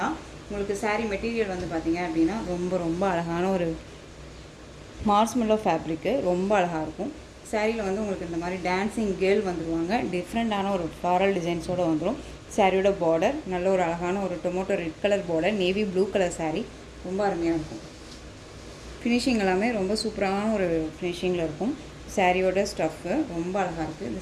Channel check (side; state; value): both; identical; correlation 1.00